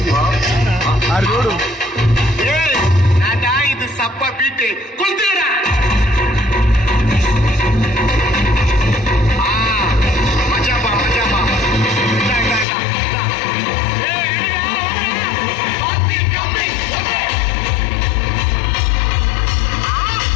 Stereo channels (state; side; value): drops out; right; at 12.7 s